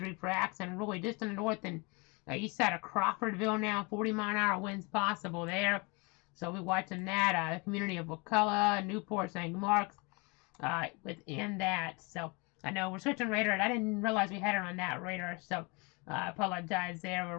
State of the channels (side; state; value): right; quieter; 28.2 dB